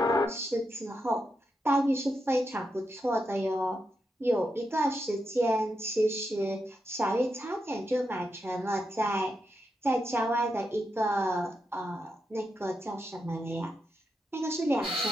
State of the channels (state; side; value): normal; both; correlation 0.85